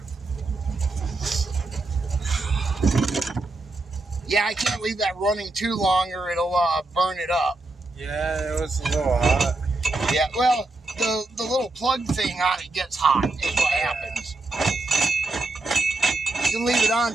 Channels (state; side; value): quieter; left; 3.1 dB